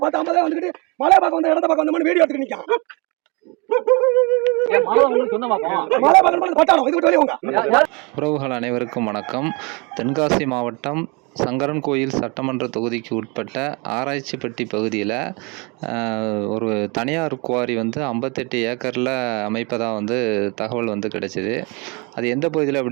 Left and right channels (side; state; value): left; quieter; 29.8 dB